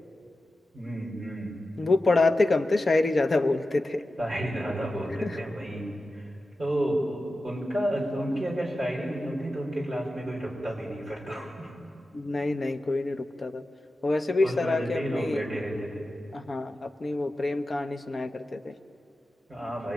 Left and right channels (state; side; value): normal; both; correlation 0.93